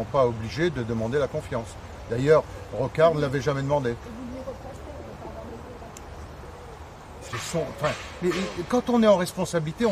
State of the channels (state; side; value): identical; both; correlation 1.00